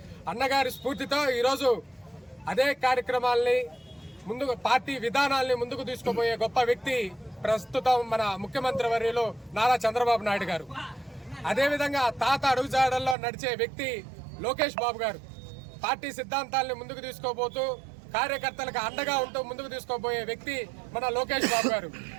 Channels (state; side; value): drops out; left; at 13.2 s